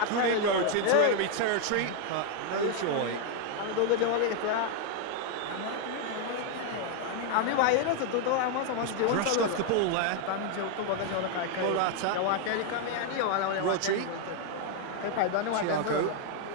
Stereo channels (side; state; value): both; different; correlation 0.00